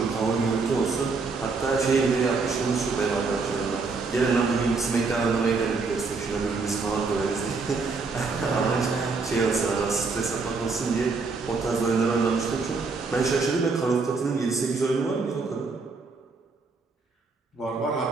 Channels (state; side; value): quieter; left; 4.3 dB